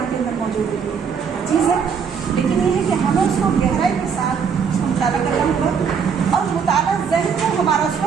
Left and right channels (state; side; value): quieter; left; 6.5 dB